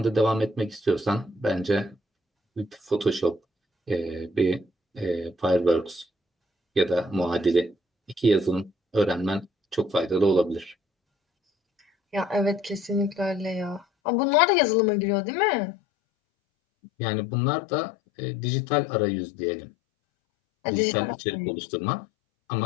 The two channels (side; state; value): right; drops out; at 13.9 s